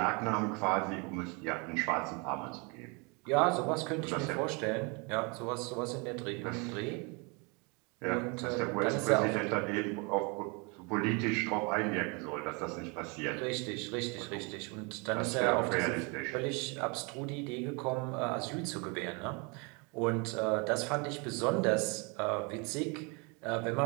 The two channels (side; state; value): left; quieter; 31.1 dB